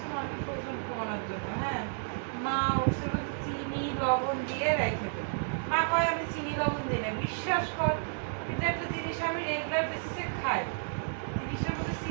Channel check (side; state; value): left; silent; digital silence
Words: মানুষ ওজন কমানোর জন্য। হ্যাঁ, মা ওটসের মধ্যে চিনি লবণ দিয়ে রেখে দেয়। মা কয় আমি চিনি লবণ দিই না, বিশ্বাস কর। কিন্তু একটা জিনিস আমি রেগুলার বেসিসে খাই, জিনিসের মধ্যে